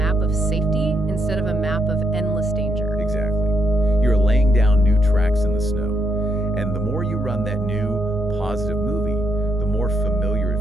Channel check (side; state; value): both; normal; correlation 0.78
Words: of safety instead of a map of endless danger. Exactly. You're laying down new tracks in the snow. And the more you run that new, positive movie, the more familiar